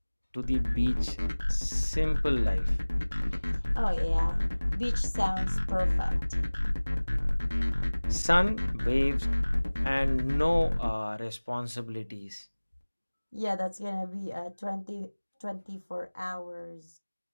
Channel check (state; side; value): inverted; both; correlation -1.00